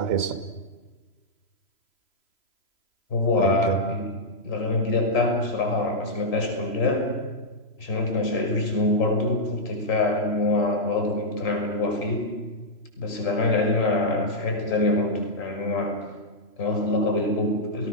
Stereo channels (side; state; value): right; late; 3.0 ms